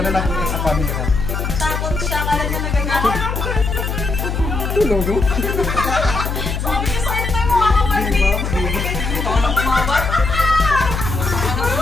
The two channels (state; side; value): noise; left; hum, 2 dB below the sound